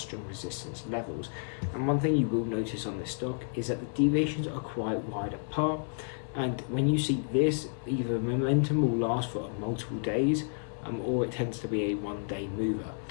resistance levels. And one thing you will notice on this stock is that the deviations are quite wide apart. And when you see this, either momentum will last for multiple days, or it tends to be a one-day mover.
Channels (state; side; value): silent; right; 56 dB below the other